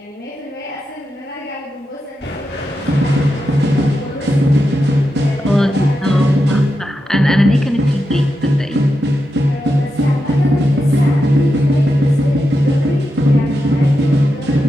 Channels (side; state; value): both; normal; correlation 0.88